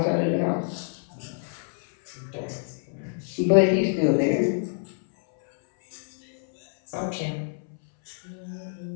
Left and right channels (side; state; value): right; silent; 61 dB below the other